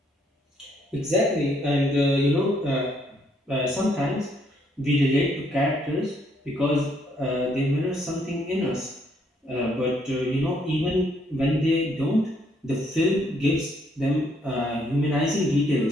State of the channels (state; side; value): normal; both; correlation 0.70